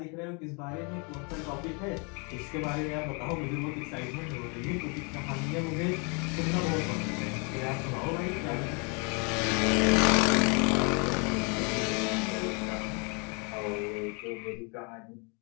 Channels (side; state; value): right; quieter; 34.0 dB